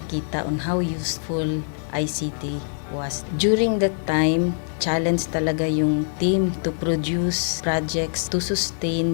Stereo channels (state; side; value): silent; right; digital silence